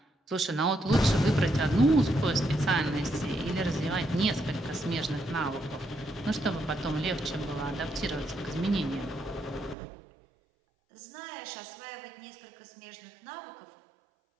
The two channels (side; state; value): left; drops out; at 9.8 s